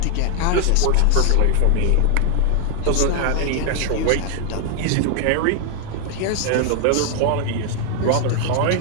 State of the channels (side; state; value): both; different; correlation 0.00